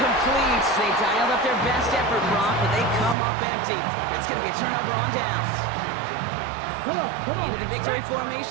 They dialed up their best effort, Brock, but they come up empty. That's going to be a turnover on downs. Come on. Into the victory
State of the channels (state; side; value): drops out; left; at 3.2 s